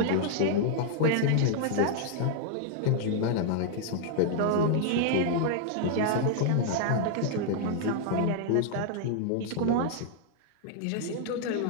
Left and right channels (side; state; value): both; different; correlation 0.00